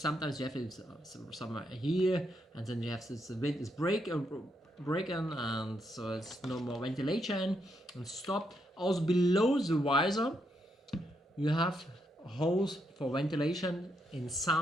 you have it somewhere here, and then you have this, the wind is breaking, and so it's no more ventilation and stop. Also below the visor you have holes for ventilation. In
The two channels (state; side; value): normal; both; correlation 0.79